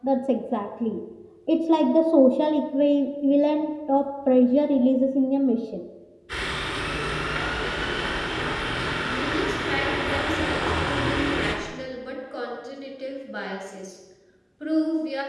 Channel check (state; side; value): identical; both; correlation 1.00